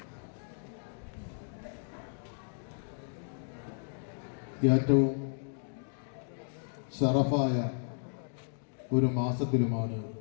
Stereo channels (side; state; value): right; silent; digital silence